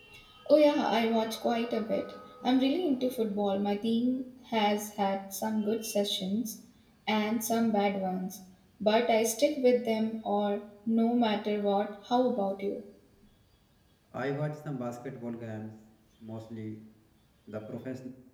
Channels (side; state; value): both; identical; correlation 1.00